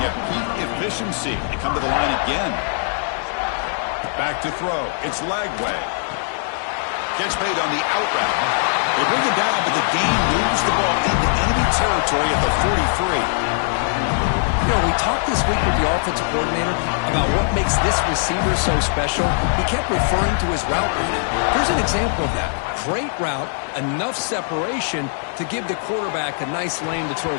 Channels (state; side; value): silent; right; digital silence